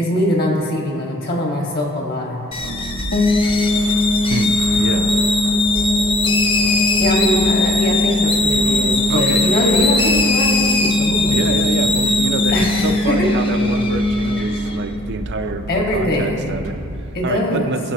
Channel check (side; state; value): both; normal; correlation 0.57